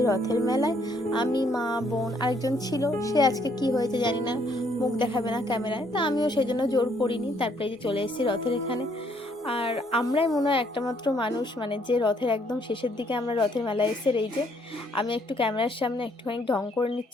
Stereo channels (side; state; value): both; normal; correlation 0.68